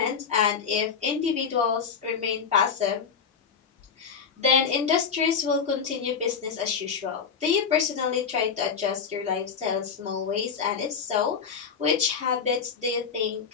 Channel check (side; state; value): right; quieter; 6.3 dB